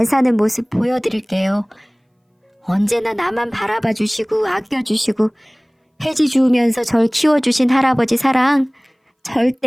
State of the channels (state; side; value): identical; both; correlation 1.00